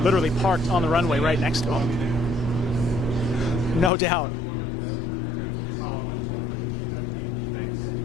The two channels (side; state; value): right; drops out; at 3.9 s